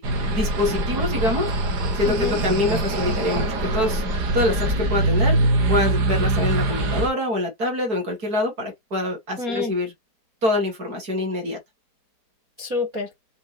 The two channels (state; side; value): late; left; 4.6 ms